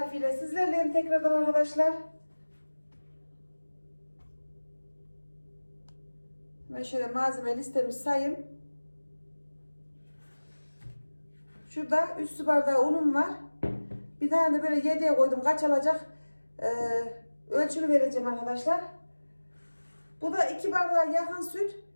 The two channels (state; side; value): inverted; both; correlation -1.00